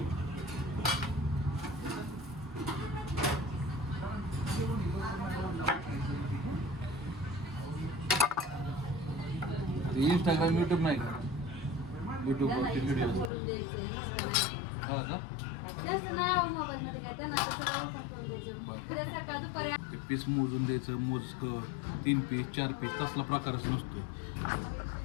इंस्टाग्राम युट्यूब नाही का, युट्यूबवरती व्हिडिओ हा का. ते पीस मोजून द्यायचं, मोजकं 3 पीस 4 पीस तसला प्रकारच नसतो.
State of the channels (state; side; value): drops out; right; at 13.3 s